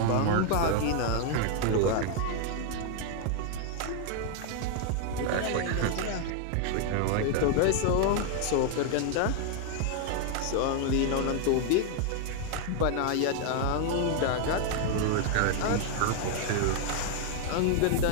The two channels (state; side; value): different; both; correlation 0.00